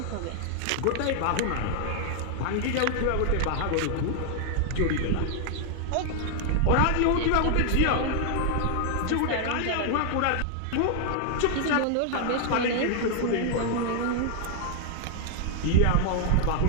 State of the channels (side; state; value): both; different; correlation 0.00